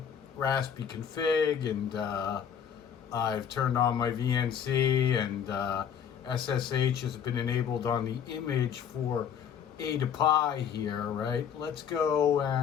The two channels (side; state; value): right; quieter; 8.1 dB